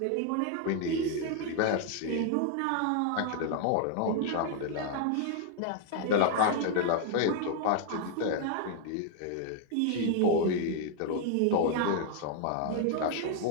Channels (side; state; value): both; different; correlation 0.00